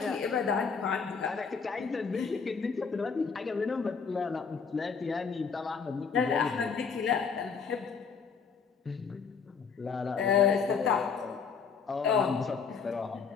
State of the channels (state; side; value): quieter; right; 5.8 dB